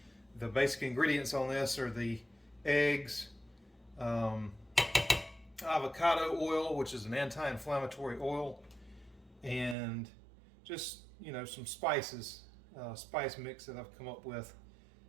The basic ingredients on this are the eggs, avocado oil, which is an anti-inflammatory oil, and just some spices, spice mix that I've come up with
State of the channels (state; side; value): drops out; left; at 9.8 s